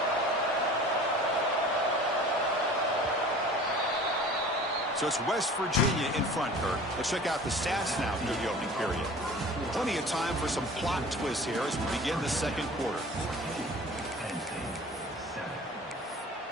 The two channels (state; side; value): normal; both; correlation 0.43